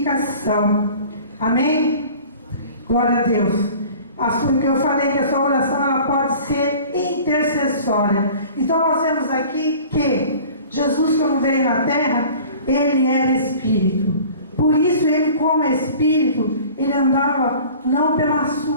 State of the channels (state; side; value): inverted; both; correlation -0.45